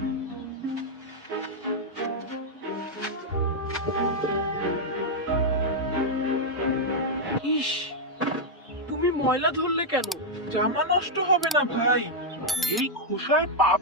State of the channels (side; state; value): both; normal; correlation -0.02